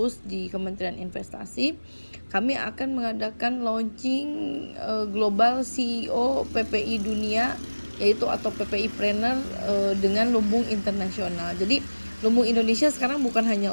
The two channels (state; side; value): inverted; both; correlation -1.00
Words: di Kementerian Investasi kami akan mengadakan launching global CEO PPI Dunia, yaitu atau PPI Planner dengan Lumbung Internasional. Jadi Lumbung Indonesia sekarang bukan hanya